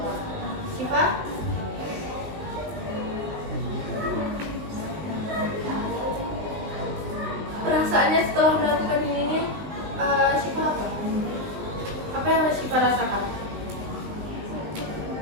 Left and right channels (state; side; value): late; left; 20 ms